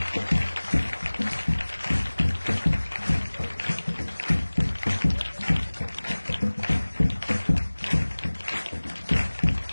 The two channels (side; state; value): both; inverted; correlation -1.00